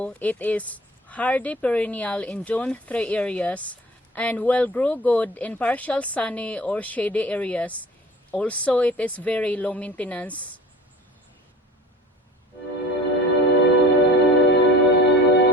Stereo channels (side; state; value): both; normal; correlation 0.41